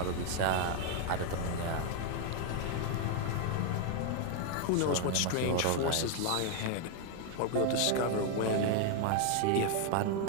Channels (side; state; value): both; different; correlation 0.00